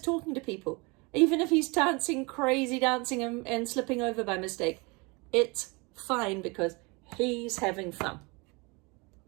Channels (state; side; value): quieter; left; 27.9 dB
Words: talking to people, even if he's crazy dancing and slipping over by mistake, it's fine because he's having fun.